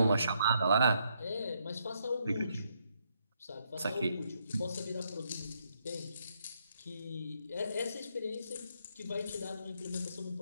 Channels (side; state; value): both; inverted; correlation -0.76